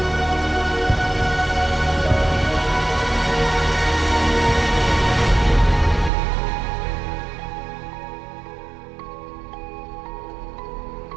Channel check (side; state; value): left; drops out; at 6.1 s